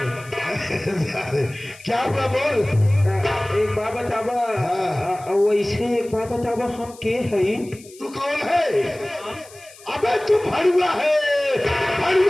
क्या हुआ बोल। एक बात बतावा। वैसे एक बात बतावा हम के हई? तू कौन है? अबे तू भड़ुआ है,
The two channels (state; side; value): noise; left; hiss, 22 dB below the sound